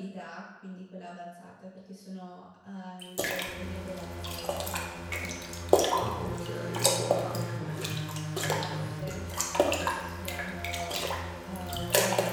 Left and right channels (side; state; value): both; identical; correlation 1.00